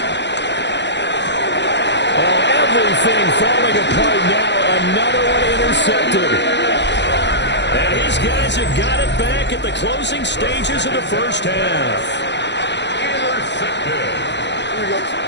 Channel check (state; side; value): late; right; 0.51 ms